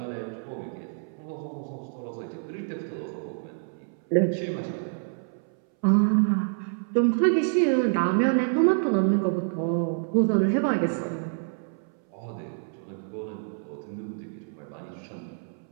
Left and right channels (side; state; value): left; silent; 60 dB below the other